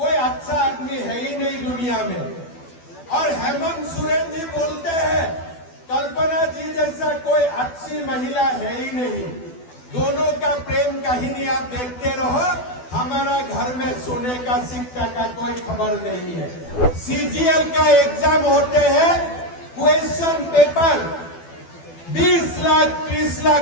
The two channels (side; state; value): right; late; 12 ms